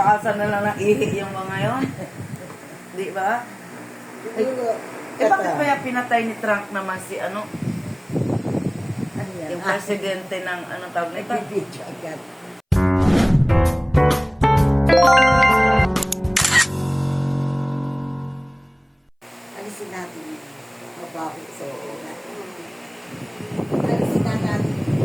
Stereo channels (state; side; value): identical; both; correlation 1.00